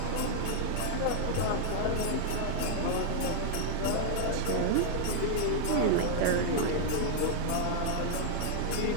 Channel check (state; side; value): different; both; correlation 0.00